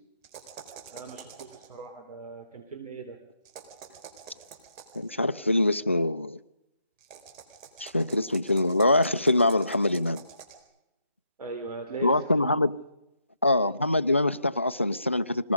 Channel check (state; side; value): inverted; both; correlation -0.79